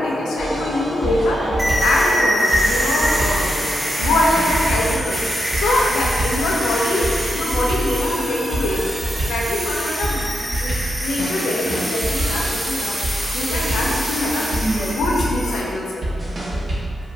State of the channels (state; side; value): normal; both; correlation 0.85